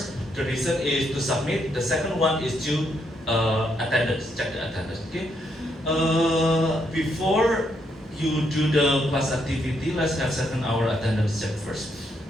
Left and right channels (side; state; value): both; normal; correlation 0.76